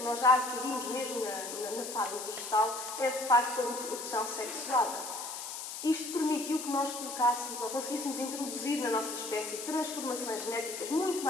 nós já adquirimos mesmo na fase vegetal é, de facto, a reprodução sexuada. Isto permitiu que nós colocássemos ou conseguíssemos introduzir na nossa espécie transformações genéticas muito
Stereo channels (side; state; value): left; noise; hiss, 7 dB below the sound